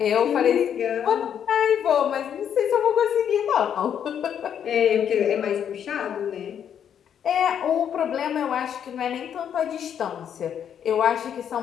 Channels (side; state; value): right; quieter; 8.8 dB